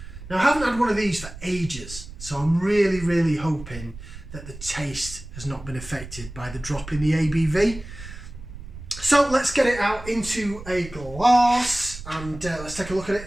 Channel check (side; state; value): right; noise; rumble, 14 dB below the sound